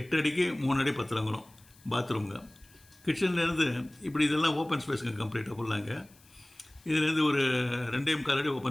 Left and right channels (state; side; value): noise; left; hiss, 28 dB below the sound